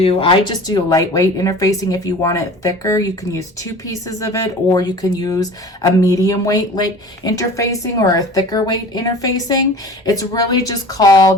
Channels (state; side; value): normal; both; correlation 0.41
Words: I just do lightweight interfacing. If you want it thicker, you can use 2 pieces of it, or you can use a medium weight interfacing or a thicker weight interfacing. It's really just